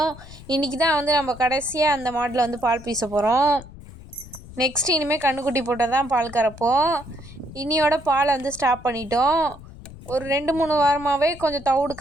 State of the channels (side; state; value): left; noise; rumble, 17 dB below the sound